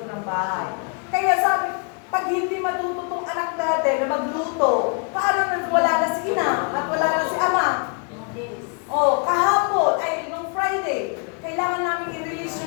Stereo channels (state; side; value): quieter; right; 36.5 dB